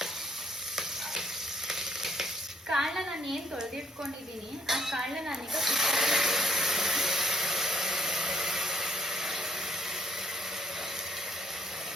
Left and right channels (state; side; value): normal; both; correlation 0.64